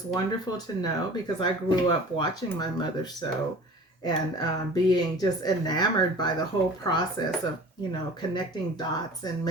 wonderful to know, because I grew up watching my mother sew and being just enamored by the whole process of, connecting dots and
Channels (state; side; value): normal; both; correlation 0.43